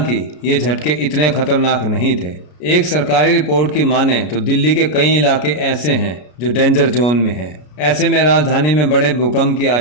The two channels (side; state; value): right; late; 33 ms